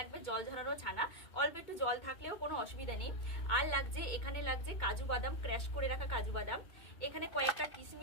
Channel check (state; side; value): late; right; 2.2 ms